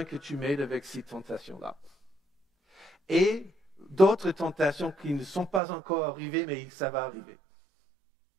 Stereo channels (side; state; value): left; drops out; at 5.6 s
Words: que tu m'aides avec ces tentations-là. Et d'autres tentations qui ne sont pas encore arrivées, mais ça va arriver.